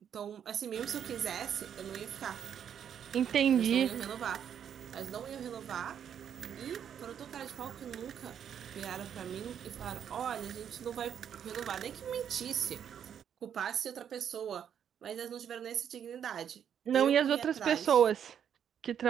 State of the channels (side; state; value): left; quieter; 8.7 dB